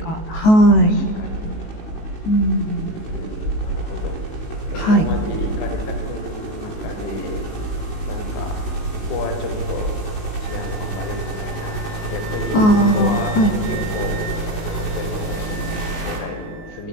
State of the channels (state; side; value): late; right; 19 ms